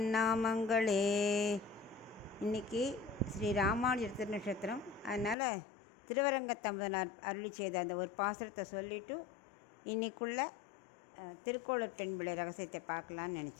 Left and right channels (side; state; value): right; drops out; at 5.4 s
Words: நாமங்களே. இன்றைக்கி ஸ்ரீ ராமானுஜர் திருநட்சத்திரம், அதனால் திருவரங்கத்தமுதனார் அருளி செய்த அந்த ஒரு பாசுரத்தை சொல்லிவிட்டு இன்றைக்குள்ள திருக்கோளூர் பெண்பிள்ளை ரகசியத்தை பார்க்கலான்னு